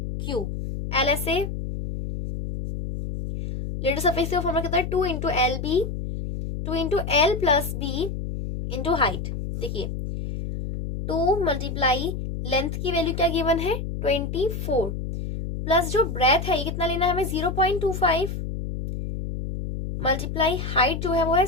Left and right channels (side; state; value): left; noise; hum, 5 dB below the sound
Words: cube. LSA lateral surface का फॉर्मूला कितना है, 2 into L B, 2 into L plus B into height. देखिए 2 मल्टीप्लाई लेंथ की वैल्यू क्या गिवन है, 24, प्लस जो ब्रेथ है ये कितना लेना है हमें, 0.25, मल्टीप्लाई हाइट जो है वो है